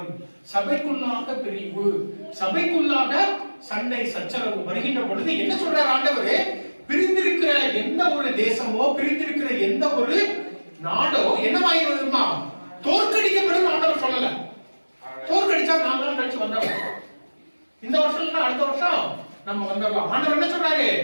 சபைக்குள்ளாக பிரிவு, சபைக்குள்ளாக சண்டை சச்சரவு வருகின்ற பொழுது என்ன சொல்றார் ஆண்டவரே? பிரிந்திருக்கிற எந்த ஒரு தேசமோ, பிரிந்திருக்கிற எந்த ஒரு நாடோ என்னவாயிருமா தோற்கடிக்கப்படும் ஆண்டவர் சொல்லல. தோற்கடிச்சா 4 நாள் கழிச்சு வந்துடலாம். இந்த வருஷம் இல்ல அடுத்த வருஷம் நம்ம வந்துடலாம். ஆண்டவர் என்ன சொல்றாரு?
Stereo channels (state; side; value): inverted; both; correlation -1.00